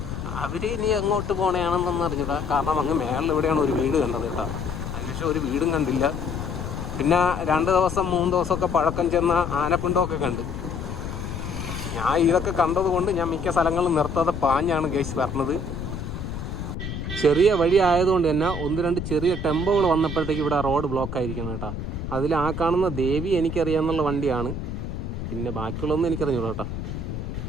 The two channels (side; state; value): left; noise; rumble, 6 dB below the sound